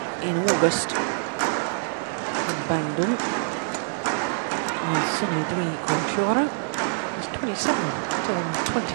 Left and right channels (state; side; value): silent; left; digital silence